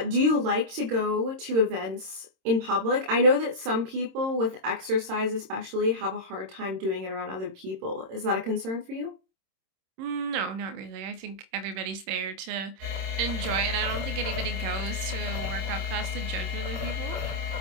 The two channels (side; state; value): left; late; 26 ms